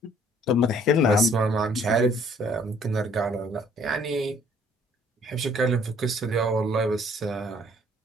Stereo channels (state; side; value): normal; both; correlation 0.60